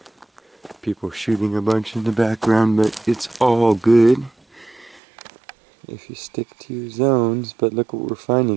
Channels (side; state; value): left; drops out; at 5.0 s